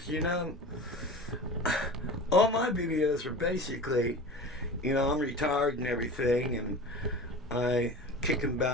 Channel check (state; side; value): normal; both; correlation 0.35